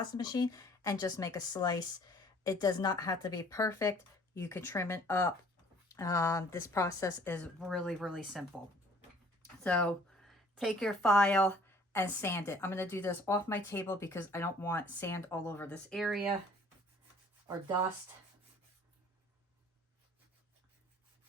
machine, and just make a slice. It does not have to be perfect. You can trim it up. This process is really, really simple. So take your file and sand it. I'm going to do this off my table because I don't want sand all over this area or dust.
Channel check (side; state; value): both; normal; correlation 0.55